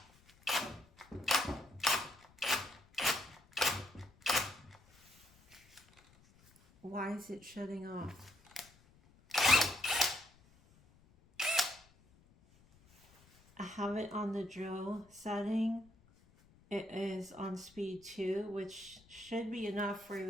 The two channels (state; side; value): noise; left; rumble, 28 dB below the sound